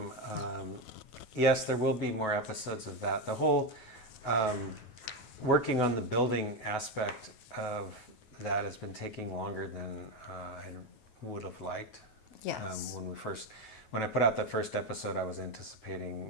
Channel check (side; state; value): right; late; 9.3 ms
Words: yes, there will be more episodes of that. The whole working on the building aspect of that has been taking longer than I would have liked. Yes. When I put out that first episode, I was